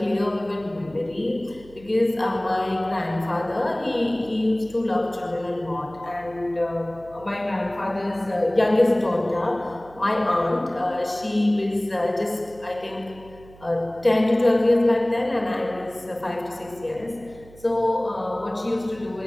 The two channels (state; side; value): noise; right; hum, 22 dB below the sound